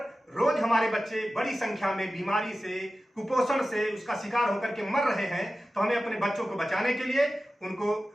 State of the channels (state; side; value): normal; both; correlation 0.94